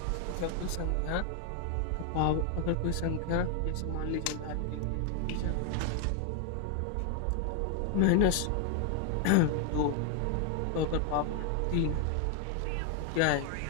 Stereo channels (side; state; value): both; different; correlation 0.00